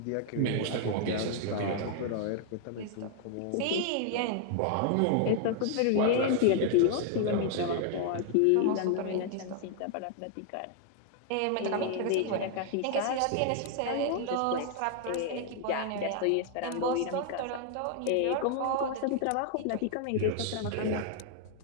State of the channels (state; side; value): different; both; correlation 0.00